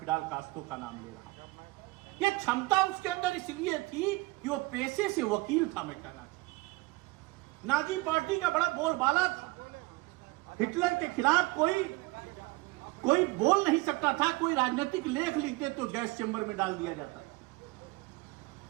कास्ट्रो का नाम ले रहा हूं। ये क्षमता उसके अंदर इसलिए थी कि वो पेशे से वकील था। मैं कहना चाहता, नाजी पार्टी का बड़ा बोलबाला था। हिटलर के खिलाफ कोई बोल नहीं सकता था, कोई राजनीतिक लेख लिखते तो गैस चैम्बर में डाल दिया जाता था।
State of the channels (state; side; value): quieter; left; 22.7 dB